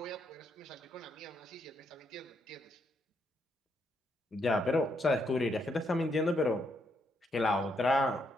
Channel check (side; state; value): both; normal; correlation 0.77